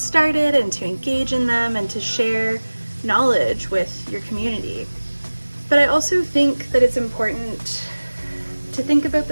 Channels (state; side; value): inverted; both; correlation -1.00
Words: and to engage in them and to share knowledge with your community. But I also think that it's important to think about